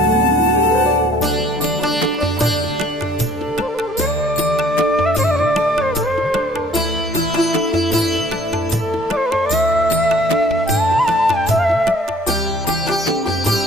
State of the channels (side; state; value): both; normal; correlation 0.56